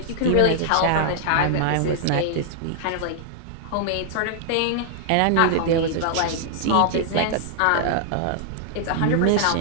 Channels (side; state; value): both; different; correlation 0.00